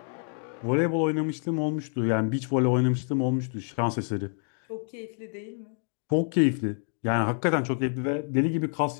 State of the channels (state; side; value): silent; right; 58 dB below the other